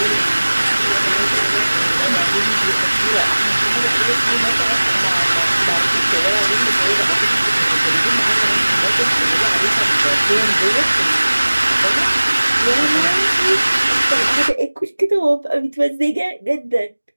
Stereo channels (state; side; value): inverted; both; correlation -1.00